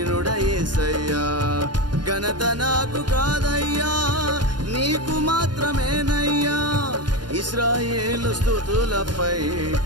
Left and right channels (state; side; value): late; left; 0.70 ms